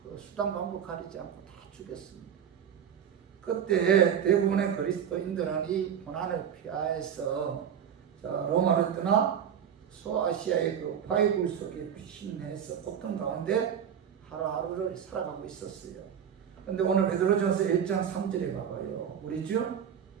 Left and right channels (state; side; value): quieter; left; 8.5 dB